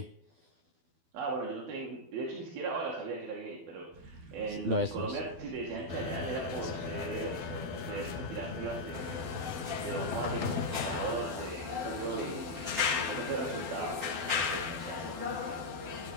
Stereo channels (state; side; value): late; left; 12 ms